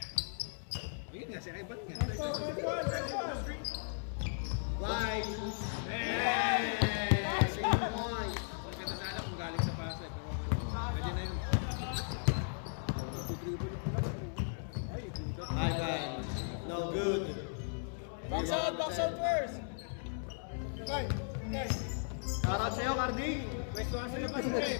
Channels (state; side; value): silent; right; digital silence